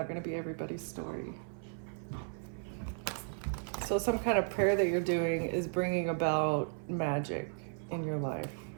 going to be everybody's story. So some kind of prayer that you're doing is bringing about magic in your life.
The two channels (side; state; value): left; silent; 54 dB below the other